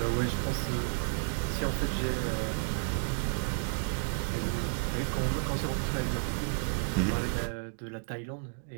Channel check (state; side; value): silent; left; digital silence